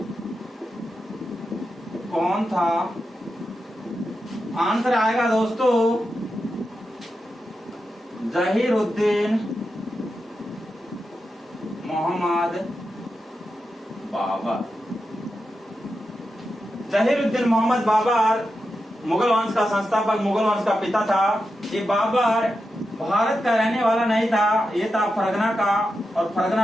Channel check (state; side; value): normal; both; correlation 0.89